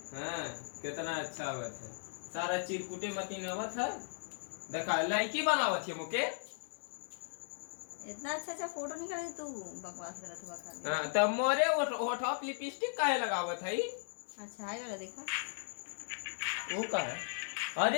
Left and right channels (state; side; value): silent; right; 53 dB below the other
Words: हाँ कितना अच्छा आवत है। सारा चिरकुटे मती नवत है। देखा लड़की बनावत है मुके। इतना अच्छा फोटो निकाले तू बकवास करत हुआ खाली। हाँ तब मोरे होठा पे लिपस्टिक काहे लगावत है? अच्छा है वाला देखा। वो का है?